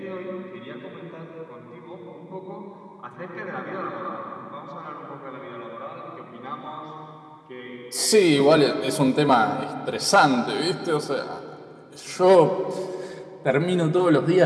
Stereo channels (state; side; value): identical; both; correlation 1.00